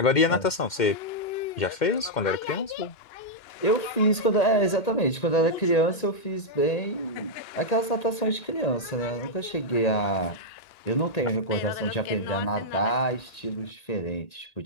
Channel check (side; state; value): right; late; 1.8 ms